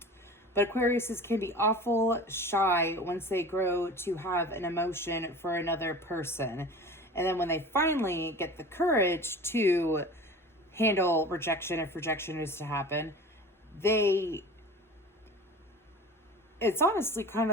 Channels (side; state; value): both; normal; correlation 0.38